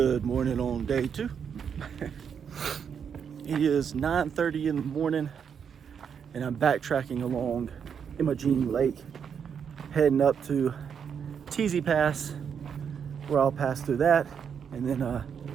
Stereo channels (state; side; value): quieter; left; 7.3 dB